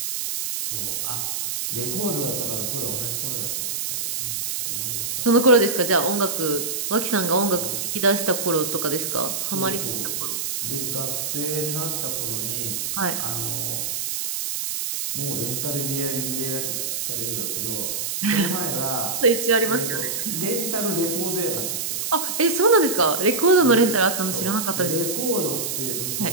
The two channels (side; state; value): right; noise; hiss, 2 dB below the sound